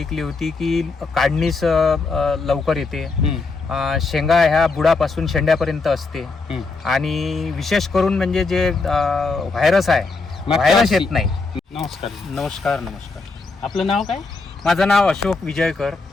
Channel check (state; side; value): quieter; right; 4.0 dB